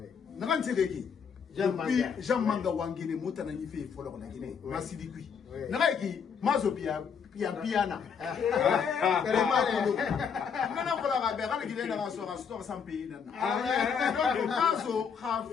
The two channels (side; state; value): right; quieter; 6.6 dB